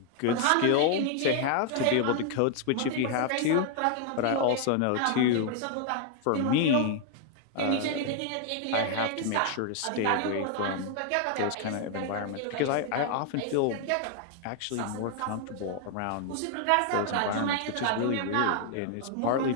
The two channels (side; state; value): both; different; correlation 0.00